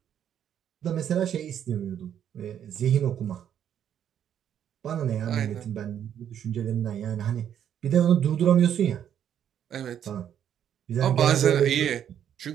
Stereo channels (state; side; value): quieter; left; 9.5 dB